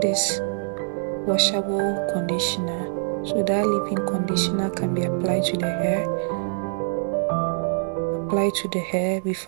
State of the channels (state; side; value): silent; left; 57 dB below the other